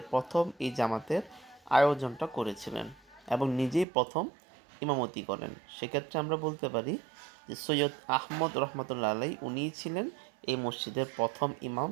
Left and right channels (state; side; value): drops out; left; at 3.9 s